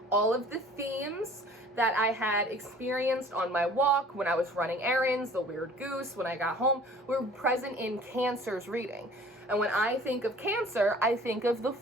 all of the themes that I had experienced on my walk, when I was running errands, the weird goose, when I got home, were present in Cancer's reading. And when I think of Cancer, I think of the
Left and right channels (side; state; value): both; normal; correlation 0.49